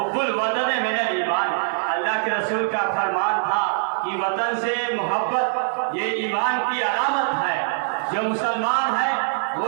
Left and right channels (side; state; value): left; silent; digital silence